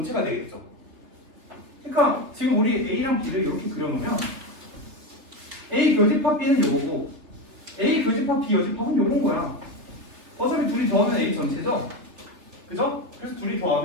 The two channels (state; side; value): late; left; 3.6 ms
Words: 되겠죠. 그러니까 지금 우리 A랑 B를 이렇게 그려놓으면 A 교집합 B는 요거고 A 교집합 B 여집합은 요건 거야. 어차피 둘이 더하면 A 전체죠? 그죠? 그래서 둘이